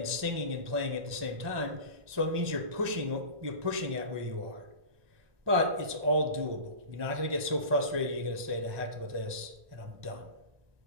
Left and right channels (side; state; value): left; late; 1.2 ms